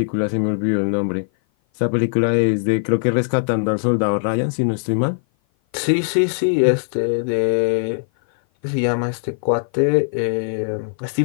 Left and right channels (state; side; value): silent; right; 56 dB below the other